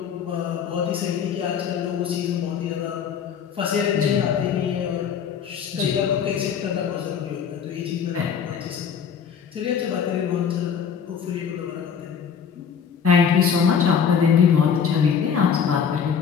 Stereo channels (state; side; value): quieter; right; 7.2 dB